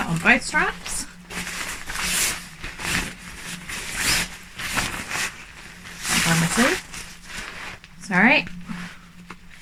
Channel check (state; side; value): identical; both; correlation 1.00